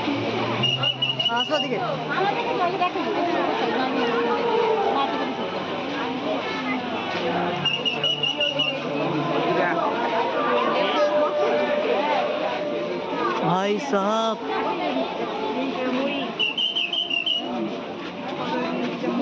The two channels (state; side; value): identical; both; correlation 1.00